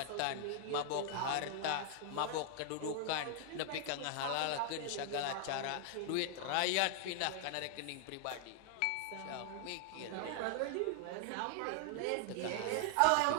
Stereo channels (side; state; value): both; different; correlation 0.00